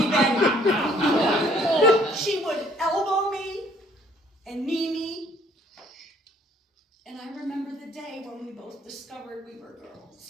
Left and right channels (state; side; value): normal; both; correlation 0.61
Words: Betty. She would elbow me and knee me. And I remember the day when we both discovered we were